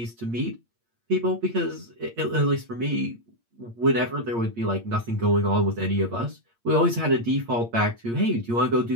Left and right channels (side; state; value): left; late; 8.7 ms